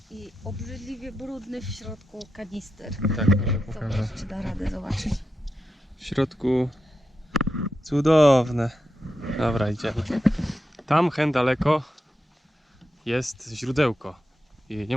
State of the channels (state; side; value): normal; both; correlation 0.88